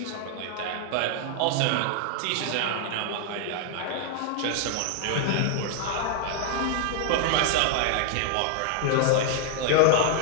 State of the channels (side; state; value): both; different; correlation 0.00